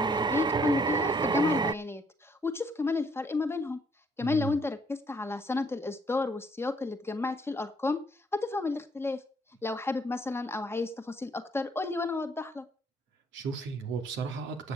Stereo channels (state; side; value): normal; both; correlation 0.66